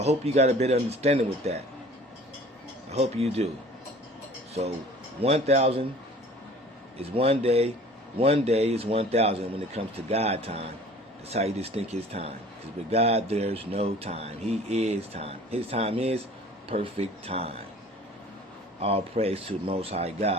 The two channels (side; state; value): both; normal; correlation 0.47